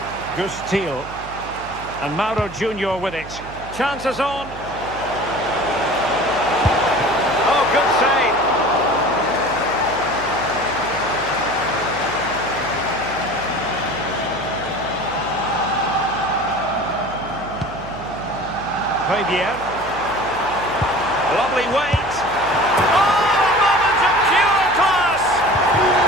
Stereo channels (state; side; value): noise; right; hum, 15 dB below the sound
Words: Gus Thiel. And Mauro Junior with it. Chances on. Oh, good save. Fabian. Lovely weight.